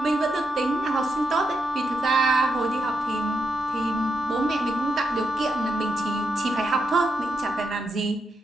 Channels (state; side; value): normal; both; correlation 0.83